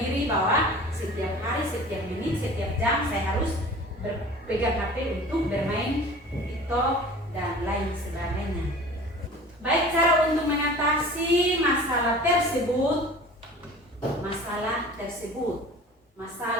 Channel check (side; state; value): both; normal; correlation 0.42